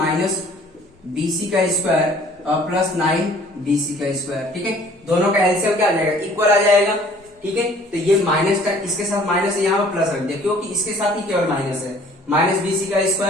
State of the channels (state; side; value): normal; both; correlation 0.54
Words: BC का स्क्वायर और प्लस 9 BC का स्क्वायर, ठीक है। दोनों का एलसीएम क्या आ जाएगा, इक्वल आ जाएगा, ठीक है। तो ये माइनस का इसके साथ माइनस है, यहाँ पर प्लस रख दिया क्योंकि इसके साथ ही केवल माइनस है, माइनस BC का